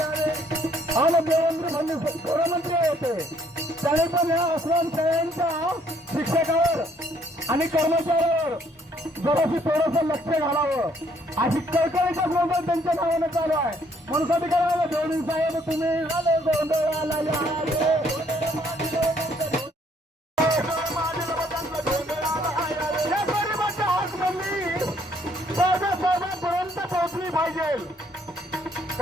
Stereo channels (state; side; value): normal; both; correlation 0.66